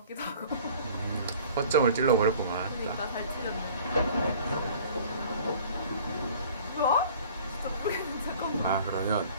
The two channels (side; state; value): both; inverted; correlation -0.49